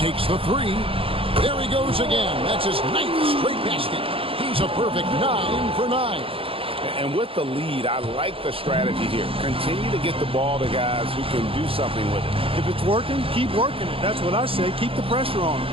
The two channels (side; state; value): left; late; 0.27 ms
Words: the three. There he goes again. That's his 9th straight basket. He's a perfect 9 for 9. And with the lead, I like the strategy here. Continue to get the ball to guys who can do something with it. If it's working, keep working it. That's what I say. Keep the pressure on him.